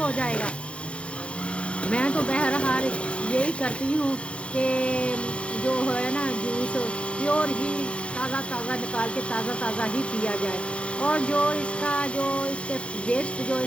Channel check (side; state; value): right; late; 0.060 ms